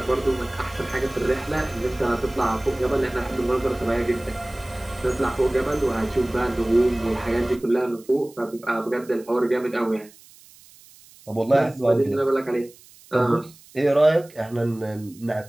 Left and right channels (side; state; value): right; noise; hiss, 24 dB below the sound